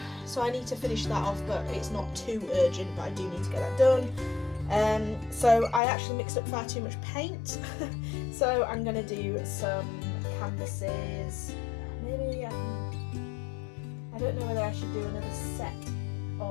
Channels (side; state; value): right; drops out; at 5.8 s